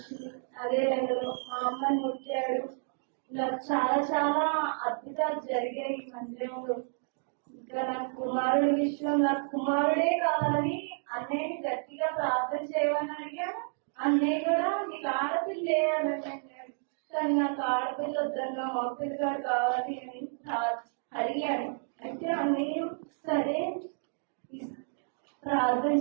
అదే రంగంలో మా అమ్మని ముట్టాడు. నాకు చాలా చాలా అద్భుతాలు జరిగాయి ఈ మందిరంలో. ఇంకా నాకు కుమారుడి విషయం, నాకు కుమారుడే కావాలని అన్నయ్యని గట్టిగా ప్రార్థన చేయమని అడిగాను. అన్నయ్య కూడా నీకు ఆడపిల్ల వేయాలని అన్నాడు. కానీ నాకు ఆడపిల్ల వద్దన్నా మగపిల్లగాడు కావాలి అని అడిగాను. అయితే అన్నయ్య సరే ప్రార్థన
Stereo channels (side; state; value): left; silent; digital silence